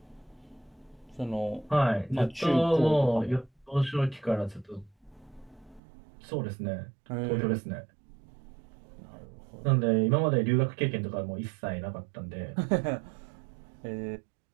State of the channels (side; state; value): left; drops out; at 5.8 s